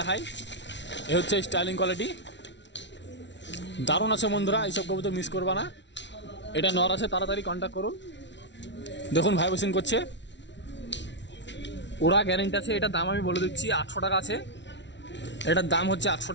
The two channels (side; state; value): right; late; 0.52 ms